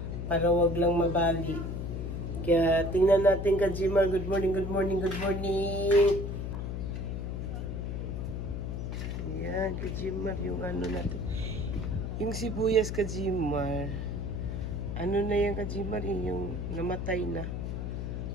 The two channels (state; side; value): noise; left; hum, 4 dB below the sound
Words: para wag lang mabali. Kaya tingnan natin Kajimar. Good morning, good morning, good morning. Ayan, Kajimar, yung ano natin. Yung sibuyas Kajimar. Ano na yan Kajimar, yung namatay na.